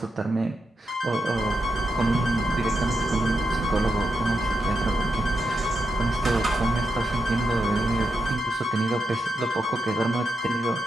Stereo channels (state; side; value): normal; both; correlation 0.84